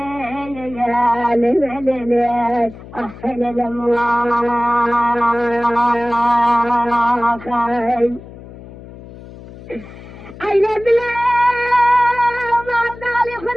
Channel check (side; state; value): left; noise; hum, 17 dB below the sound